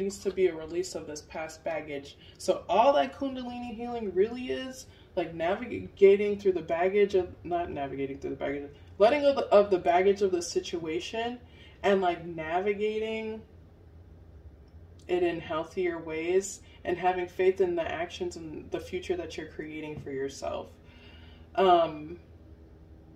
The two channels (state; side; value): identical; both; correlation 1.00